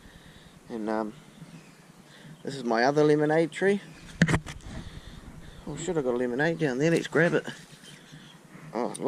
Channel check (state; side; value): identical; both; correlation 1.00